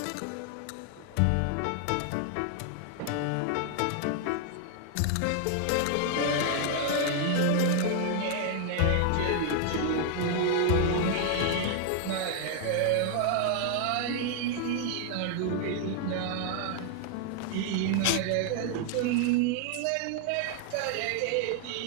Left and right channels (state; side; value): different; both; correlation 0.00